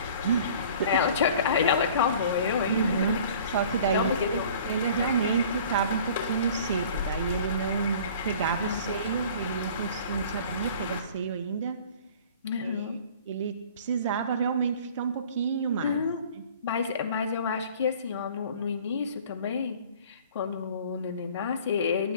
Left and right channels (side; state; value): both; inverted; correlation -0.47